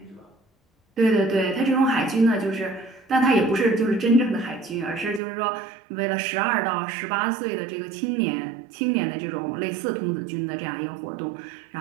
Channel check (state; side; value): drops out; left; at 5.2 s